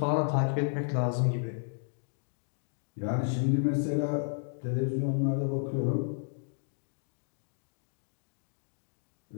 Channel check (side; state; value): right; silent; digital silence